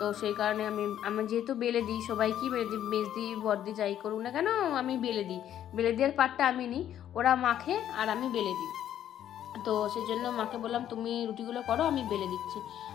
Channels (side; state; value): right; quieter; 10.9 dB